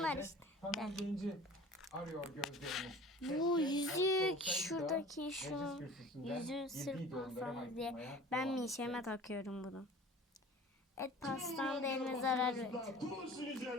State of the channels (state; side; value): normal; both; correlation 0.43